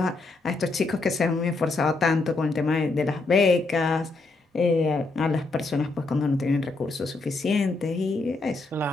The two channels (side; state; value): right; quieter; 3.4 dB